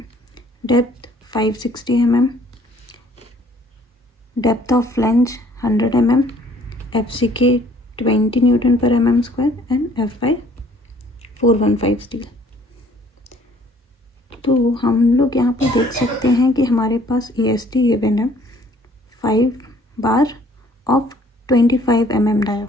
Depth 560 mm. Depth of flange 100 mm. FCK 20 Newton per mm square and FI 415 steel. तो हम लोग यहाँ पर देख सकते हैं कि हमारे पास EST गिवन है 5 bar of 25 mm dia.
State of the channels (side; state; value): both; normal; correlation 0.58